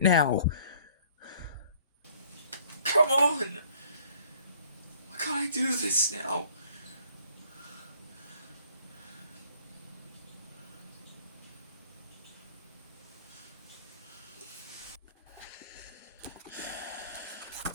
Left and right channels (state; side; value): inverted; both; correlation -0.57